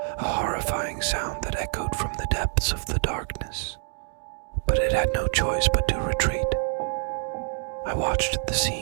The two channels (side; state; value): left; silent; digital silence